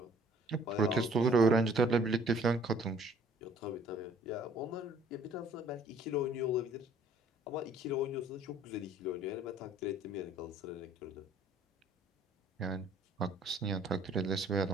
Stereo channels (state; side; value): normal; both; correlation 0.57